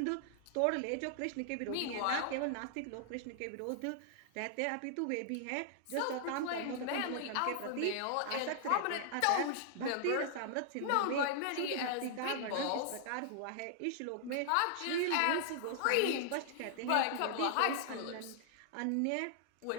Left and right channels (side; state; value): both; different; correlation -0.01